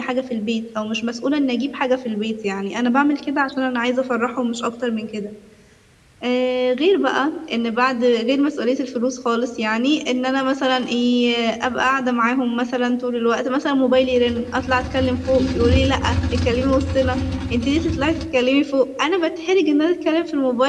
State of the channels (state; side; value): identical; both; correlation 1.00